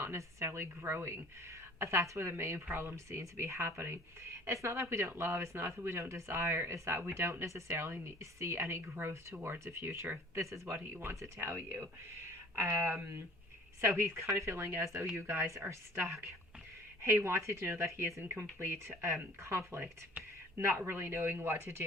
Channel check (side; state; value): both; normal; correlation 0.49